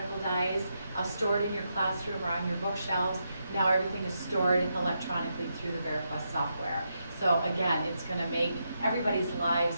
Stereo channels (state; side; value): inverted; both; correlation -0.83